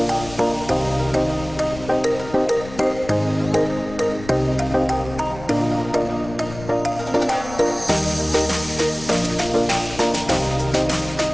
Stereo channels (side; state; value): left; noise; rumble, 15 dB below the sound